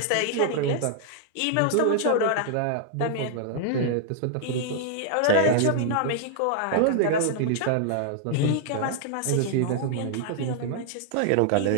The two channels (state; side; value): different; both; correlation -0.01